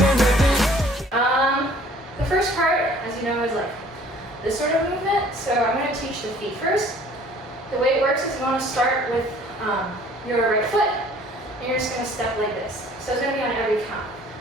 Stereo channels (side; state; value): both; normal; correlation 0.54